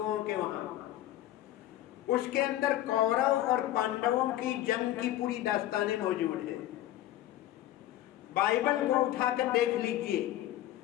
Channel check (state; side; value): quieter; right; 13.8 dB